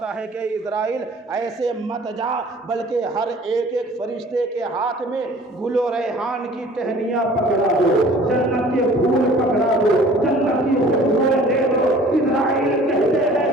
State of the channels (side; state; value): both; normal; correlation 0.50